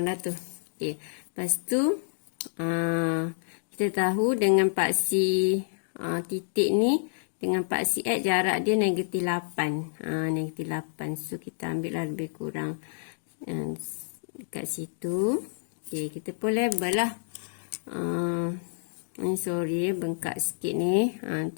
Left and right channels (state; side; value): silent; right; digital silence